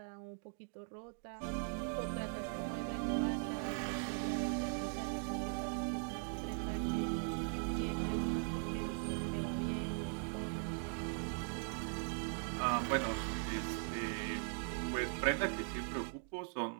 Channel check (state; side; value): silent; left; 51 dB below the other